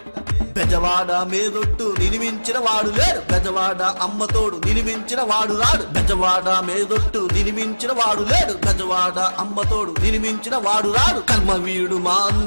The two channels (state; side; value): inverted; both; correlation -1.00